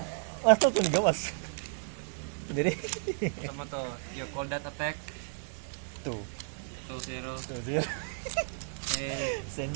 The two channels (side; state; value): left; silent; digital silence